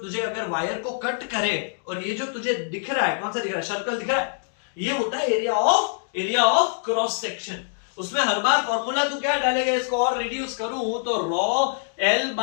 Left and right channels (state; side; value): silent; right; digital silence